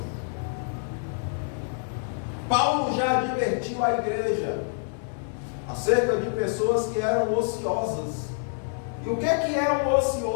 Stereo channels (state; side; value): silent; right; 60 dB below the other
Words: Paulo já advertiu a igreja acerca de pessoas que eram ociosas E o que é um